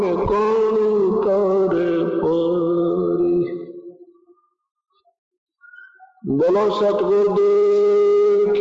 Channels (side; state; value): both; identical; correlation 1.00